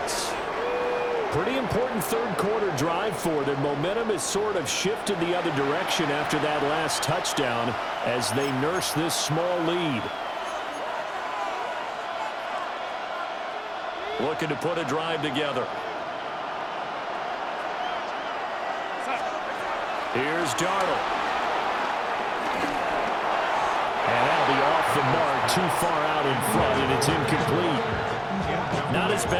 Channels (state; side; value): identical; both; correlation 1.00